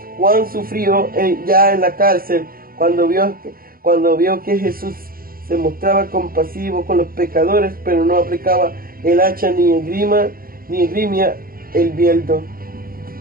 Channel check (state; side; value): late; left; 0.42 ms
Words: Juan sufrió ya en la cárcel cuando vio que Jesús se mostraba compasivo con los pecadores, pero no aplicaba el hacha ni esgrimía el bieldo.